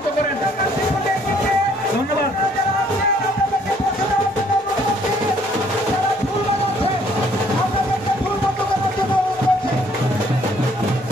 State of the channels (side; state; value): both; normal; correlation 0.63